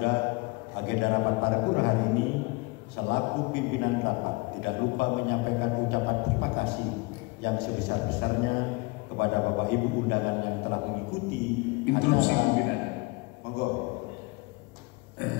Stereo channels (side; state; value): right; quieter; 26.3 dB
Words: agenda rapat paripurna hari ini. Selaku pimpinan rapat tidak lupa menyampaikan ucapan terima kasih yang sebesar-besarnya kepada Bapak Ibu undangan yang telah mengikuti instruksi pimpinan. Monggo.